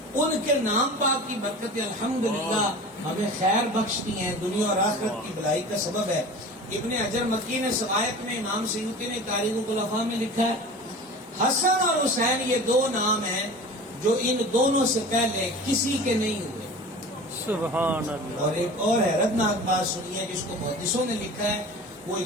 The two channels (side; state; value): both; normal; correlation 0.37